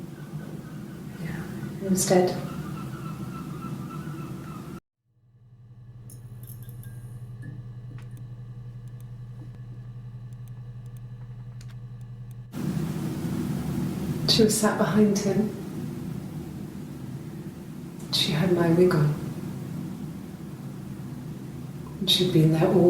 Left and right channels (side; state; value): both; identical; correlation 1.00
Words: He was dead. She was sat behind him. She had my wig on. And she'd been there